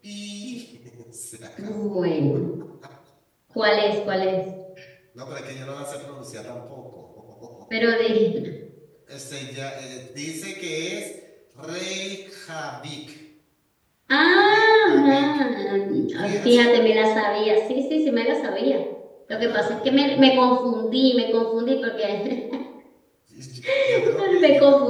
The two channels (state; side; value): identical; both; correlation 1.00